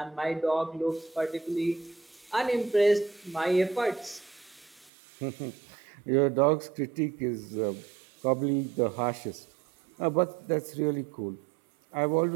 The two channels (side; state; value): left; drops out; at 4.9 s